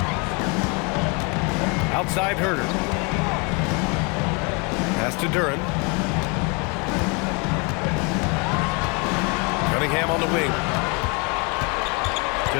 Outside Herter. Pass to Duren. Cunningham on the wing.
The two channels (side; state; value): right; quieter; 31.6 dB